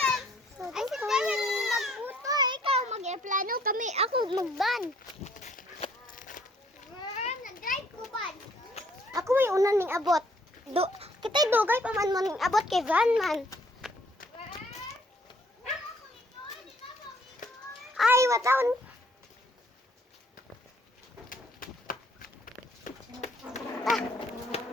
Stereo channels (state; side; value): normal; both; correlation 0.63